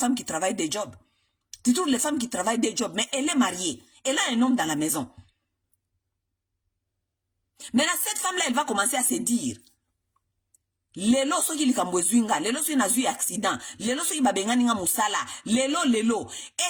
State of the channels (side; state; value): both; identical; correlation 1.00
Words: qui travaillent des jobs. Tu trouves les femmes qui travaillent des jobs, mais elle est mariée. Elle a un homme dans la maison. Maintenant, cette femme-là, elle va commencer à se dire, lelo soki likambo zwinga, lelo soki na zui accident, lelo soki babengani nga musala, lelo,